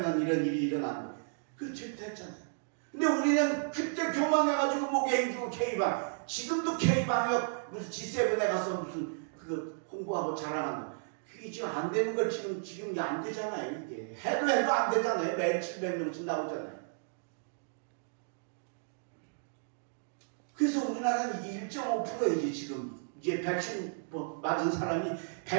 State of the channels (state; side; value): silent; left; digital silence